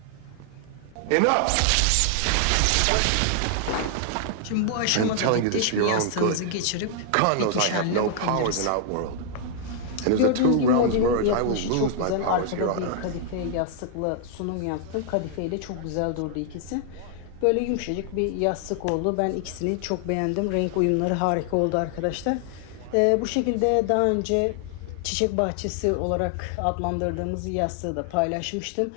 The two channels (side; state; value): both; different; correlation 0.00